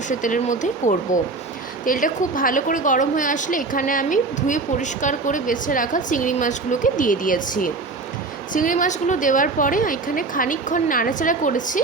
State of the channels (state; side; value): quieter; left; 3.8 dB